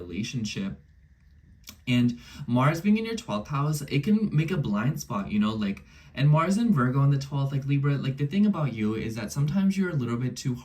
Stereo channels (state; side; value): identical; both; correlation 1.00